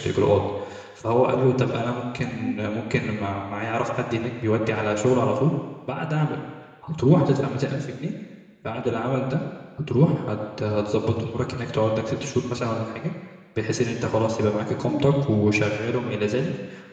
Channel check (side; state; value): both; identical; correlation 1.00